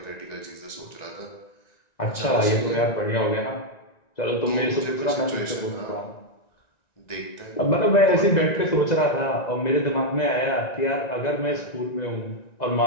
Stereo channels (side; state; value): right; late; 1.9 ms